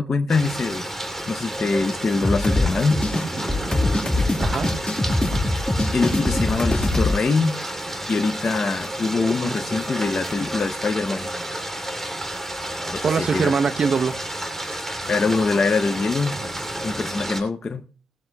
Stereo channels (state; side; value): normal; both; correlation 0.88